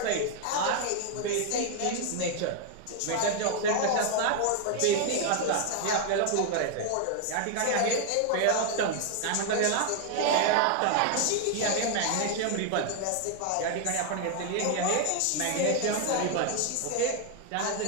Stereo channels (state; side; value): different; both; correlation 0.00